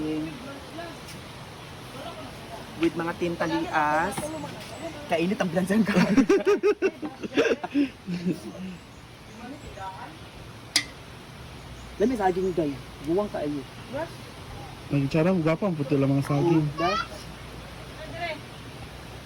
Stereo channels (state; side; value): identical; both; correlation 1.00